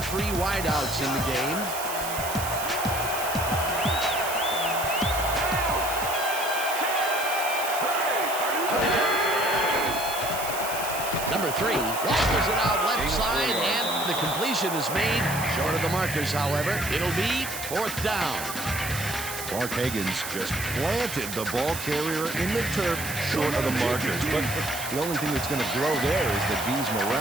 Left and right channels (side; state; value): right; noise; hiss, 7 dB below the sound